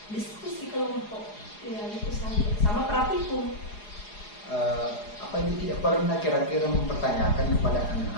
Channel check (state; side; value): late; right; 4.8 ms